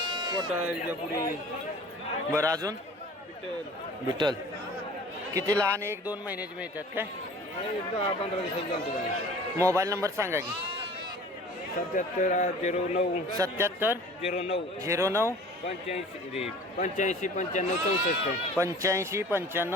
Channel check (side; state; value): both; normal; correlation 0.45